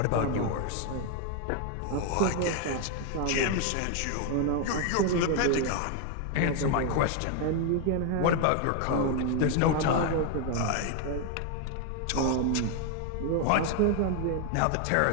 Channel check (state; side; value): different; both; correlation 0.01